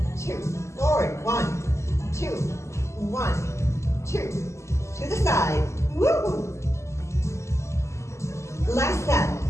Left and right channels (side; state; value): right; late; 0.14 ms